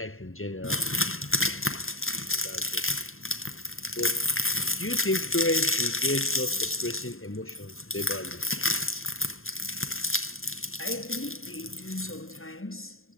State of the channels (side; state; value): right; late; 0.61 ms